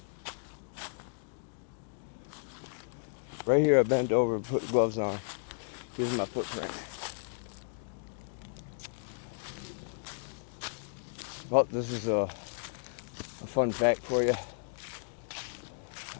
right here I bent over and put gloves on. Here's my footprint. Well, this is a fun fact for you.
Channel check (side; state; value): right; silent; digital silence